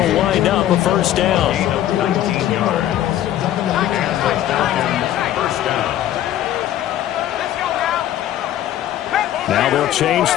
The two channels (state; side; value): quieter; right; 12.4 dB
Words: wind up a first down. 19 yards. And the Falcons first down. Now they'll change